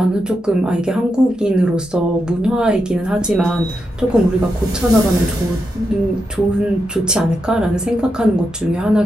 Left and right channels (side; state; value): both; normal; correlation 0.85